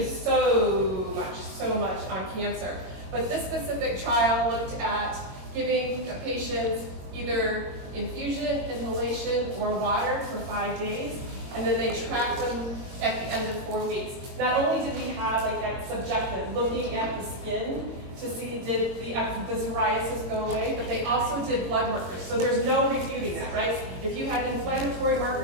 so much on cancer. But this specific trial looked at giving patients either infusion, inhalation, or water for 5 days, and then they tracked them at the end of 4 weeks. Not only did we have like that subjective, looking at the skin to see did the psoriasis go away, but they also did blood markers. So there's no refuting that, right? If you had inflammatory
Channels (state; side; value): late; left; 22 ms